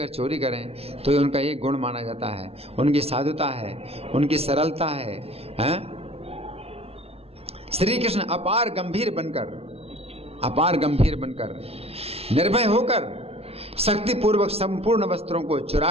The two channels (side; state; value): left; late; 0.29 ms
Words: चोरी करें तो उनका एक गुण माना जाता है, उनकी साधुता है, उनकी सरलता है। श्री कृष्ण अपार गंभीर बनकर निर्भय होकर शक्तिपूर्वक संपूर्ण वस्त्रों को